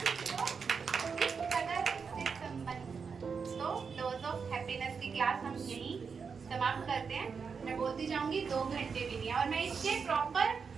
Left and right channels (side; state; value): left; quieter; 5.7 dB